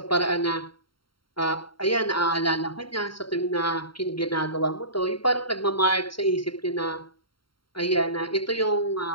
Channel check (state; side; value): late; right; 0.73 ms